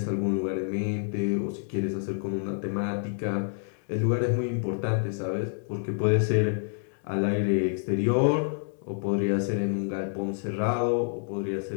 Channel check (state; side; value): silent; right; digital silence